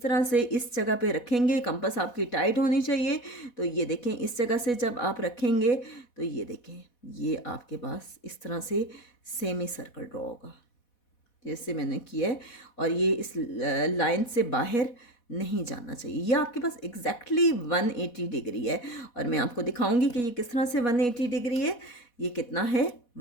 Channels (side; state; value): right; late; 4.1 ms